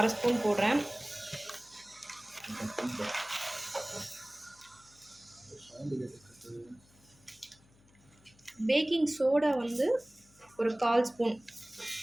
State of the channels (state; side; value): noise; left; hum, 29 dB below the sound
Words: 1/2 ஸ்பூன் போடுறேன். பேக்கிங் சோடா வந்து ஒரு